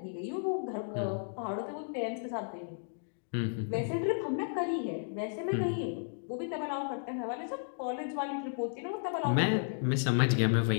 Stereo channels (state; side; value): silent; right; digital silence